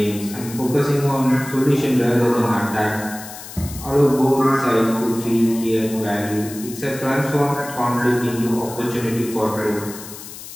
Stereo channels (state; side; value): noise; left; hiss, 13 dB below the sound